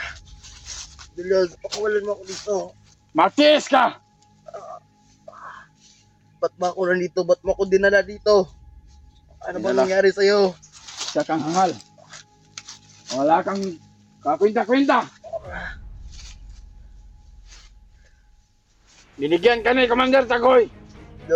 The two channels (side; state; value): both; identical; correlation 1.00